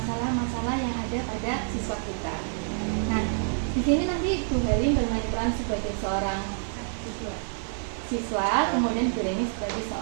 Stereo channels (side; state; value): left; silent; 60 dB below the other